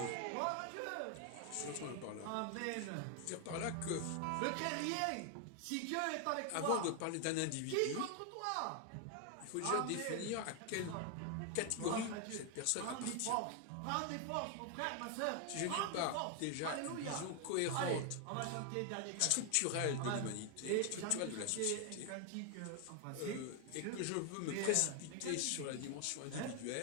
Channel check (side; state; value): both; different; correlation 0.00